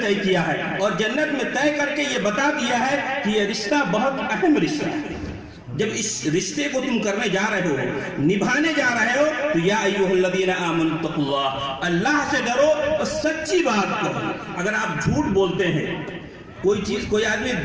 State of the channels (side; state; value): both; identical; correlation 1.00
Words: طے کیا ہے، اور جنت میں طے کر کے یہ بتا دیا ہے کہ یہ رشتہ بہت اہم رشتہ ہے۔ جب اس رشتے کو تم کرنے جا رہے ہو، نبھانے جا رہے ہو، تو یا ایھا الذین آمنوا اتقوا اللہ، اللہ سے ڈرو اور سچی بات کہو۔ اگر آپ جھوٹ بولتے ہیں، کوئی آدمی